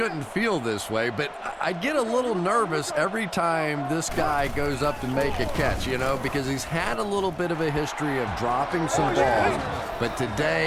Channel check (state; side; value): identical; both; correlation 1.00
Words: feel this way, but I get a little nervous every time this guy goes up to make a catch, you know, because he's had a little bit of a history of dropping some balls, but